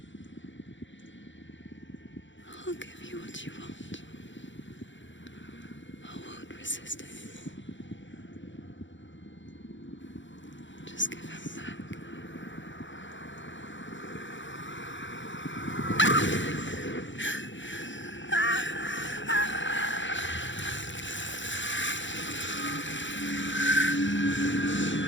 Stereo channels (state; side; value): late; right; 0.54 ms